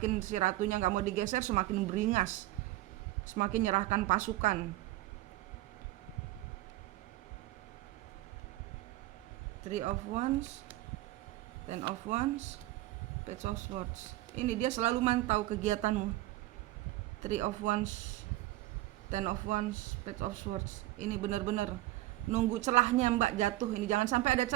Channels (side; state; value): left; quieter; 17.1 dB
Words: si ratunya nggak mau digeser, semakin beringas, semakin nyerahkan pasukan. Three of Wands, Ten of Wands, Page of Swords. Ini dia selalu mantau kegiatanmu. Three of Wands, Ten of Wands, Page of Swords. Ini benar-benar nunggu celahnya Mbak jatuh. Ini jangan sampai ada